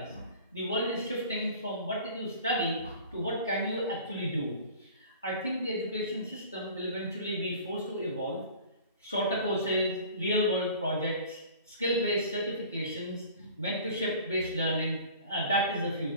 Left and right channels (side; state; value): both; inverted; correlation -0.44